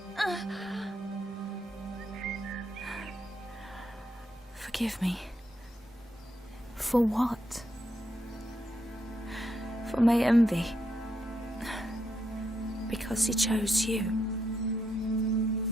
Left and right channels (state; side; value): normal; both; correlation 0.80